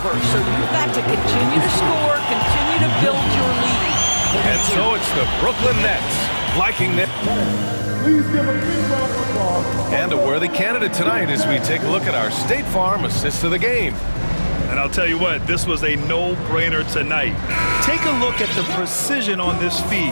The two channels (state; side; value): inverted; both; correlation -1.00